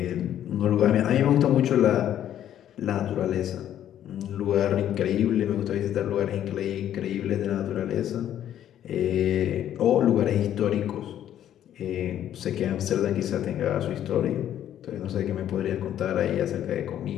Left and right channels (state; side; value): quieter; right; 11.0 dB